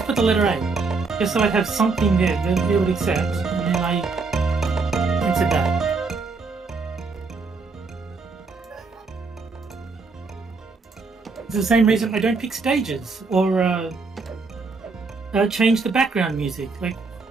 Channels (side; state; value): left; quieter; 4.2 dB